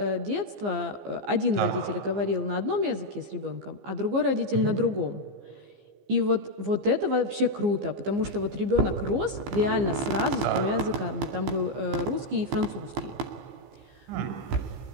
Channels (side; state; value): left; late; 15 ms